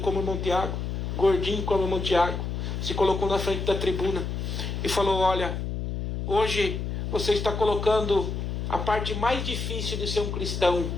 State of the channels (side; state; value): left; noise; hum, 3 dB below the sound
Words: como o irmão Tiago, gordinho como o irmão Tiago, se colocou na frente da tribuna e falou: olha, hoje você está colocando a parte mais difícil de ser um cristão